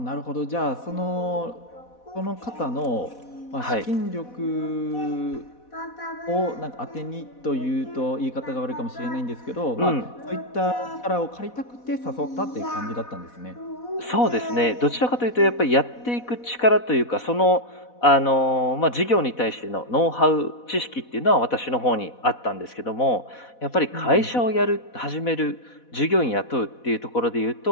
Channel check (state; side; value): late; right; 4.1 ms